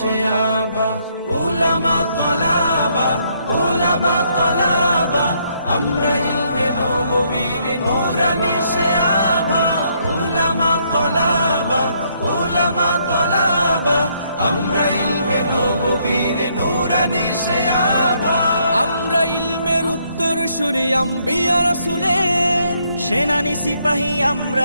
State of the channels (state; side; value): inverted; both; correlation -0.71